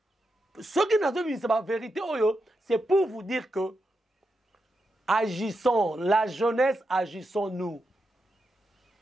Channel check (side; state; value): both; normal; correlation 0.86